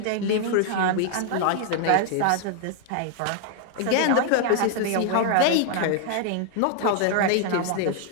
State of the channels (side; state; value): both; different; correlation 0.00